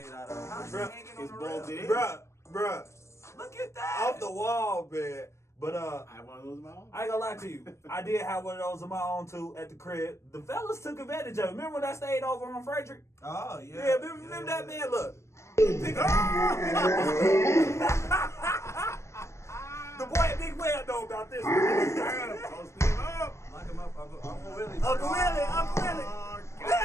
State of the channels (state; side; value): late; right; 0.13 ms